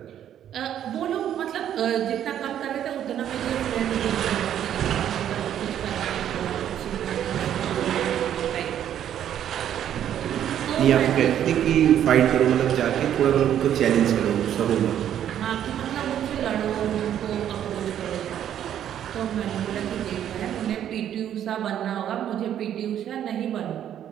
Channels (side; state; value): left; quieter; 10.4 dB